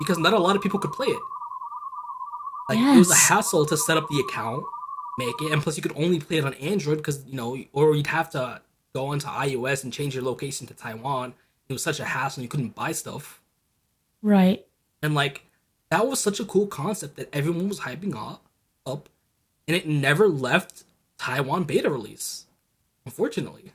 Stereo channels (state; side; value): identical; both; correlation 1.00